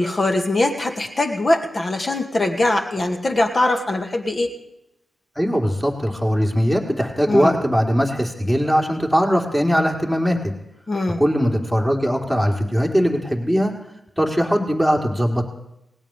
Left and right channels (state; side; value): normal; both; correlation 0.96